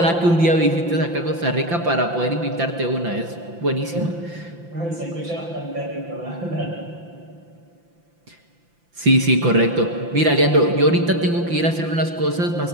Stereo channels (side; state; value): left; late; 5.9 ms